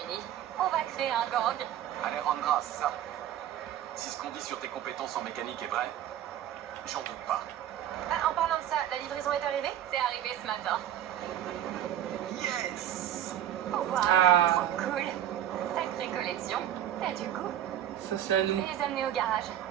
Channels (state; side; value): quieter; left; 11.4 dB